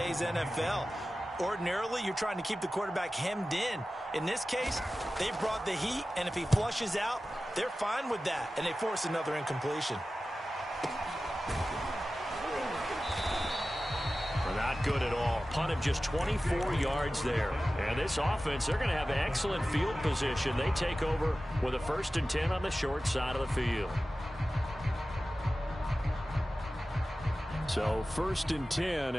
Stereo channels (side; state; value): both; normal; correlation 0.95